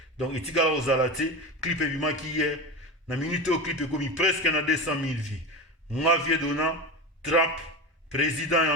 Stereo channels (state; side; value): normal; both; correlation 0.24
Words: Donc etikala ozala te clip ebimaki hier na minute o clip ekomi presque na 200 000 vues. Nga vie dona trap président ya